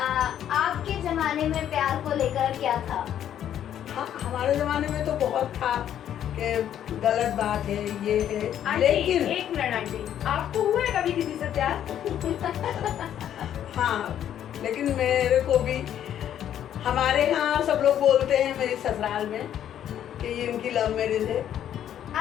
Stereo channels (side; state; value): right; quieter; 10.4 dB